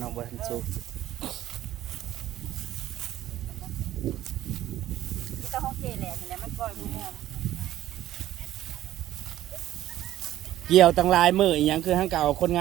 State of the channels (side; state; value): left; quieter; 13.6 dB